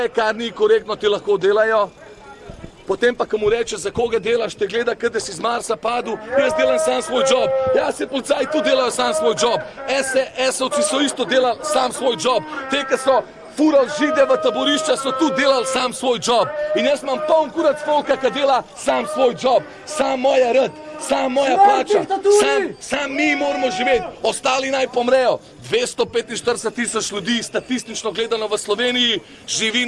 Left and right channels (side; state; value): both; identical; correlation 1.00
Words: kar ni korektno, ti lahko delajo. Potem pa, ko mu reče, za koga delaš, te gleda, kot da si z Marsa padel, jaz delam sam svoj job. Ja, se policaji tu delajo sam svoj job. SS-ovci so isto delali sam svoj job. Te, ki so furali Žide v taborišča, so tu delali sam svoj job. In jaz imam poln kurac folka, ki dela sam svoj job. Sam moja rad, sam moja plača, sam mi moramo živeti, ostali naj pomrejo. 245.000 ljudi, statistično gledano v Sloveniji, živi